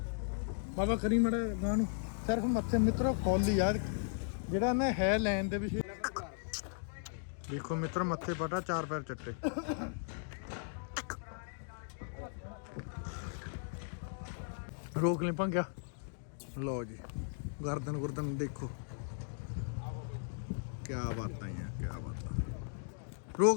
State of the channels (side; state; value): right; silent; digital silence